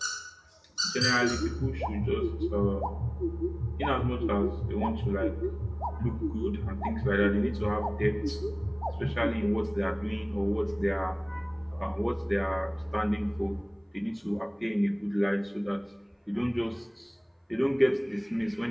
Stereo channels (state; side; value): identical; both; correlation 1.00